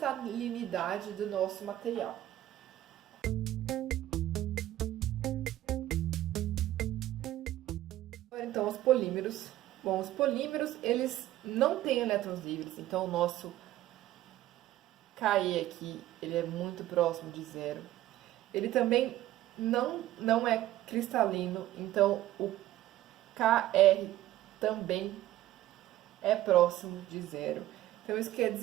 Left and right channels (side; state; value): left; quieter; 14.3 dB